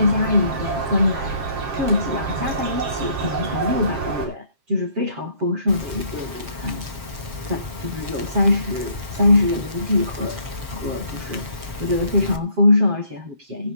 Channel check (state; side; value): late; left; 7.5 ms